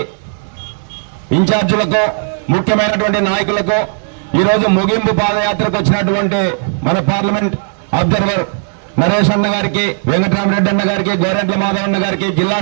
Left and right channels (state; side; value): silent; left; digital silence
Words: ఇన్ఛార్జీలకు, ముఖ్యమైనటువంటి నాయకులకు, ఈరోజు ముగింపు పాదయాత్రకు వచ్చినటువంటి మన పార్లమెంట్ అబ్జర్వర్ నరేష్ అన్న గారికి, వెంకటరామరెడ్డి అన్న గారికి, గోరెంట్ల మాధవ్ అన్న గారికి, జిల్లా